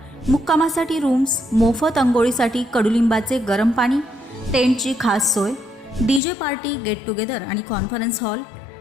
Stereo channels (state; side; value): drops out; right; at 6.2 s